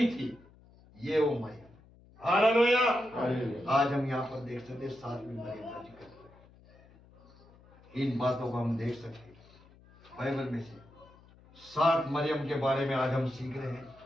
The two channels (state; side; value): noise; left; hum, 26 dB below the sound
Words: थी, ये वो मरियम। हालेलुया। आज हम यहाँ पर देख सकते 7वीं मरियम का जिक्र। इन बातों को हम देख सकते बाइबल में से। 7 मरियम के बारे में आज हम सीख रहे हैं।